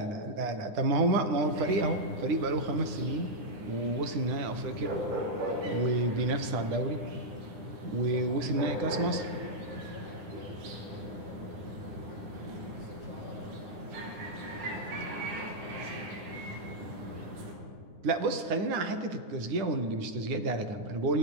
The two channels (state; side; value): late; left; 9.7 ms